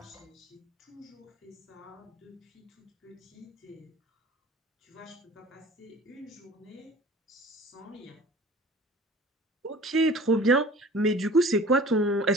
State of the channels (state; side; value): normal; both; correlation 0.45